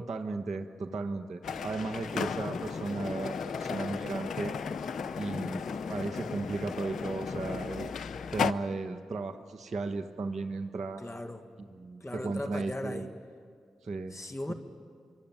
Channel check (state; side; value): normal; both; correlation 0.82